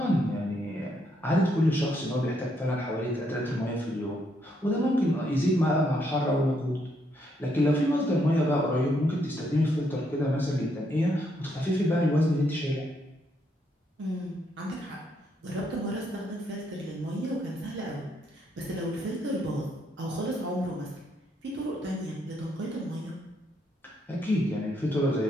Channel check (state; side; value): normal; both; correlation 0.74